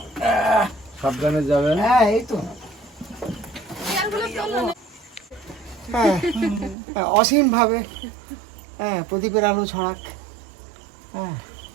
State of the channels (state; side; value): drops out; left; at 6.8 s